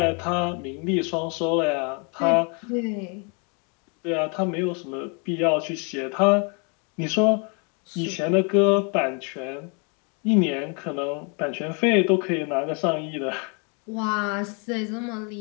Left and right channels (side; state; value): right; quieter; 35.6 dB